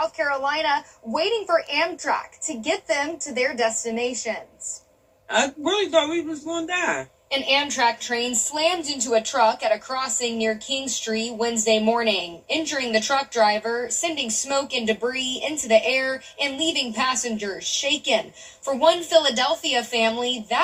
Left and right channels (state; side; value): identical; both; correlation 1.00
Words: Carolina waiting for Amtrak to get them to their destinations. I really thought we was going to die. An Amtrak train slammed into a truck at a crossing near King Street Wednesday morning, injuring the truck driver, sending smoke and debris into the air, and leaving passengers shaken. For one Philadelphia family,